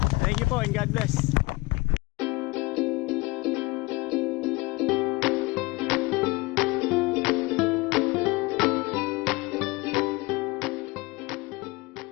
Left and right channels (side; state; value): right; quieter; 24.0 dB